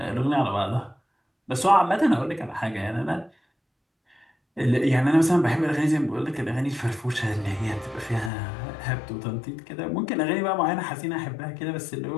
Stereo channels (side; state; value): right; drops out; at 8.3 s